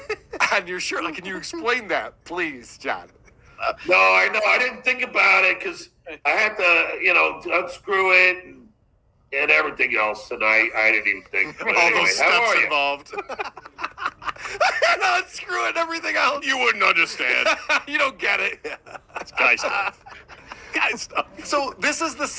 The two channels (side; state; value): both; identical; correlation 1.00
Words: on your shirt? Like, can you explain that, please, John? No, I know. I didn't think about it because I had to, unscrew it and everything else, and I didn't even think. But all anyway, those how steps are you? involved. No, screw it, everything else. You wouldn't understand. You don't get it. It's guy stuff. Guy stuff. So this is the